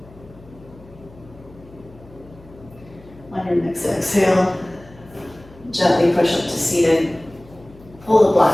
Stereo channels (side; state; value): left; noise; hum, 22 dB below the sound